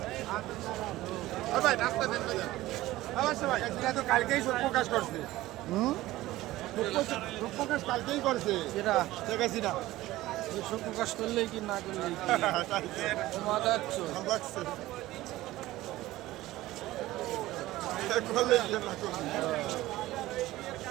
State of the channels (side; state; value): left; quieter; 16.8 dB